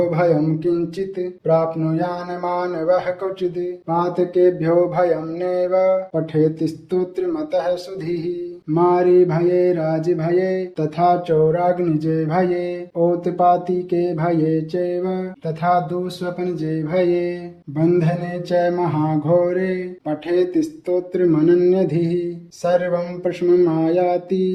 भयं किंचित् प्राप्नुयान् मानवः क्वचिद् पातकेभ्यो भयं नैव पठेति स्तोत्रमतः सुधीः मारी भये राज भये तथा चौराग्निजे भये औत्पातिके भये चैव तथा दुःस्वप्नजे भये बन्धने च महाघोरे पठेति स्तोत्रमनन्यधिः सर्वं प्रशममायाति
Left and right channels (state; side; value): identical; both; correlation 1.00